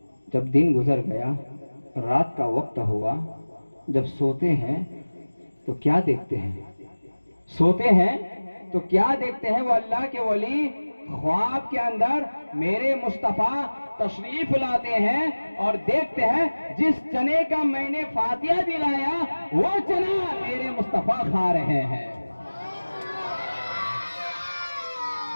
जब दिन गुजर गया, रात का वक्त हुआ, जब सोते हैं तो क्या देखते हैं? वो अल्लाह के वली ख्वाब के अंदर मेरे मुस्तफ़ा तशरीफ लाते हैं और देखते हैं जिस चने का मैंने फातिहा दिलाया वो चना मेरे मुस्तफ़ा खा रहे हैं।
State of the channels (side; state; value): both; inverted; correlation -1.00